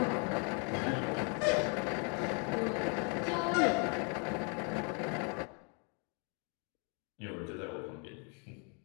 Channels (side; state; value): right; quieter; 36.4 dB